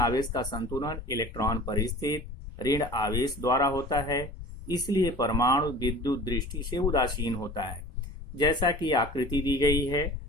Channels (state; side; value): normal; both; correlation 0.41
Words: का संतुलन इलेक्ट्रॉन पर स्थित ऋण आवेश द्वारा होता है, इसलिए परमाणु विद्युत दृष्टि से उदासीन होता है। जैसा कि आकृति दी गई है,